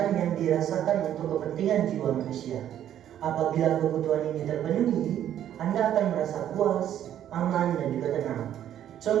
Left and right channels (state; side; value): quieter; left; 10.8 dB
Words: yang dirasakan untuk kepentingan jiwa manusia. Apabila kebutuhan ini terpenuhi, Anda akan merasa puas, aman, dan juga tenang.